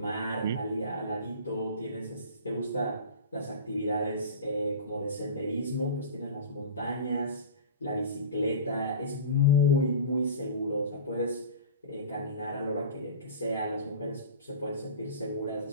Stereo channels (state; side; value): inverted; both; correlation -0.35